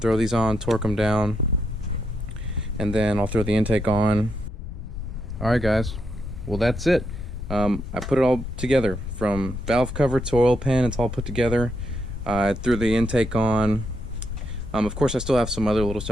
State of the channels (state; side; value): noise; left; rumble, 8 dB below the sound